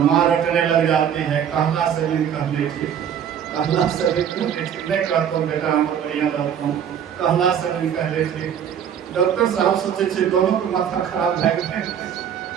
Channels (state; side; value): quieter; left; 8.8 dB